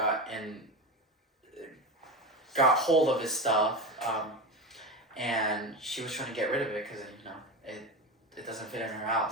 hold of his stuff, and she was trying to get rid of it because it doesn't fit in her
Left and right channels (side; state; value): both; normal; correlation 0.21